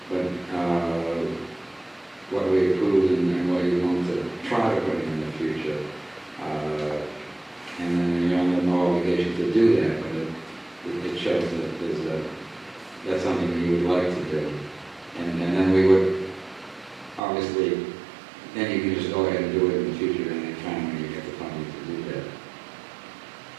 what we approved and what you want to try to put in the future. And then you're under no obligation to do that, but it shows that that's something you would like to do. And then we would, obviously, then you can just go ahead and do it in the future any time when you get the funding to do that.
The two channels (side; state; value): left; drops out; at 17.2 s